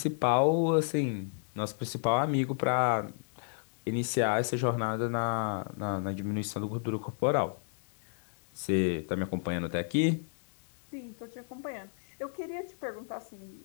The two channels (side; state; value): right; silent; digital silence